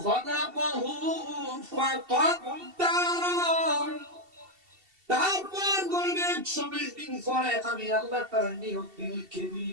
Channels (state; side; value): late; left; 2.7 ms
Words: খলাকহু ফাকাদ্দার। তারপর গর্ভে 120 দিন পরে আমি আল্লাহ তার নিয়ত লিখে